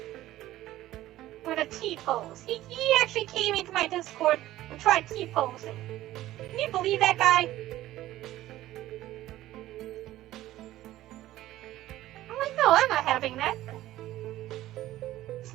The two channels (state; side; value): quieter; left; 15.0 dB